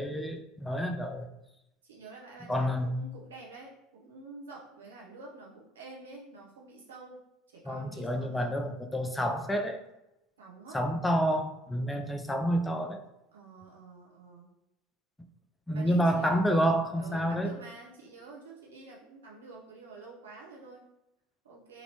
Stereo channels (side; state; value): both; normal; correlation 0.78